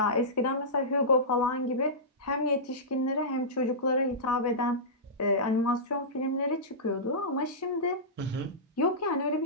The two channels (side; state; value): both; normal; correlation -0.16